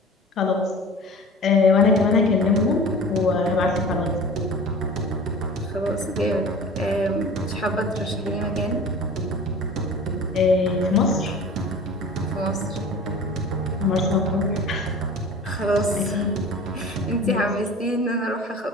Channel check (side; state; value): both; normal; correlation 0.39